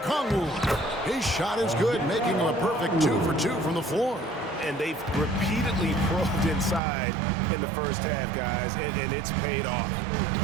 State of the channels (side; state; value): left; drops out; at 6.8 s